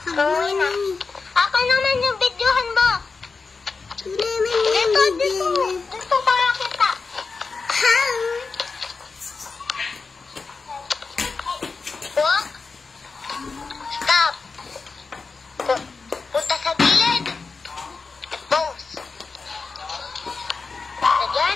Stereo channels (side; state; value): right; quieter; 4.5 dB